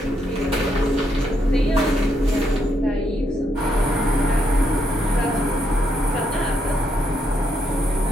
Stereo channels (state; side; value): normal; both; correlation 0.77